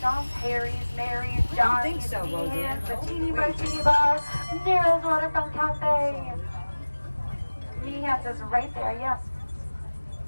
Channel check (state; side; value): inverted; both; correlation -1.00